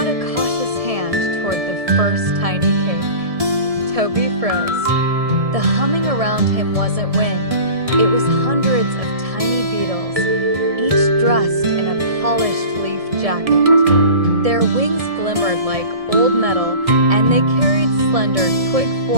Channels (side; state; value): left; late; 1.7 ms